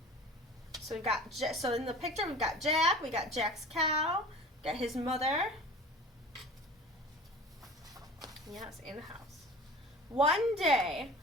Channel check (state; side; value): normal; both; correlation 0.40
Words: So so in the picture we've got Jack, we got Jack's cow, got his mother. Yes, in the house. One day,